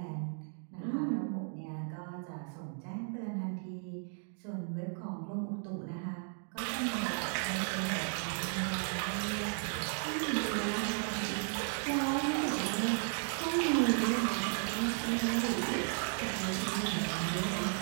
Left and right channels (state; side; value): silent; left; 54 dB below the other